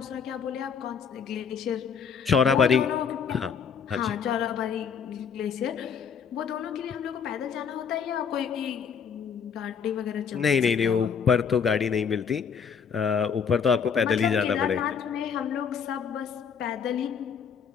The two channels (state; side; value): quieter; right; 6.8 dB